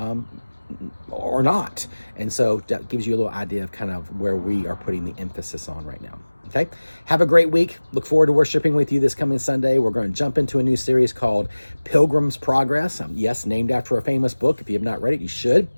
or not. And so that gives you a little idea of kind of where we are putting the emphasis on right now. Okay. Have a great week. Look forward to worshiping with you this coming Sunday. We're going to jump into a new series called Pilgrim's Progress. Yes, named after a famous book. If you have not read it, you should.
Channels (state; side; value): inverted; both; correlation -1.00